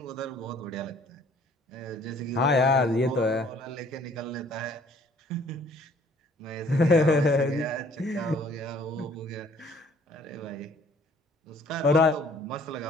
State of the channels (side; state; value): both; normal; correlation 0.58